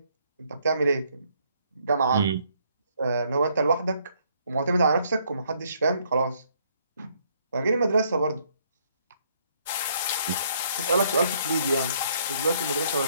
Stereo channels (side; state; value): both; inverted; correlation -0.69